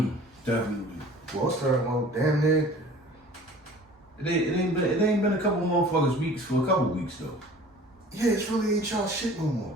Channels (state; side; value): normal; both; correlation 0.46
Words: Definitely. Well, damn near. It ain't been a couple motherfuckers weeks for a couple weeks though. Yeah, it's really ain't y'all shit no more.